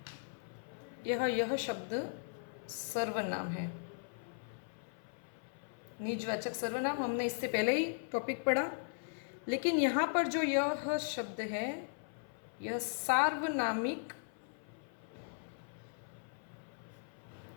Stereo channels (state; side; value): silent; right; 52 dB below the other